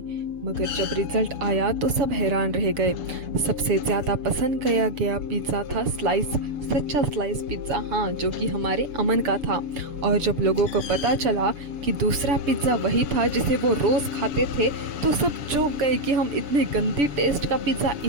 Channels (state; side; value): late; left; 7.0 ms